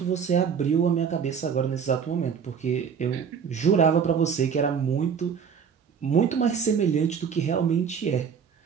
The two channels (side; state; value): left; quieter; 6.9 dB